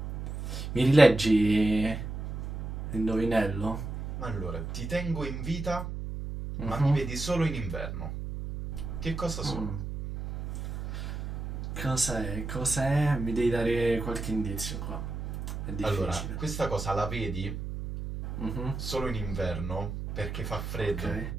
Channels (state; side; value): noise; right; hum, 6 dB below the sound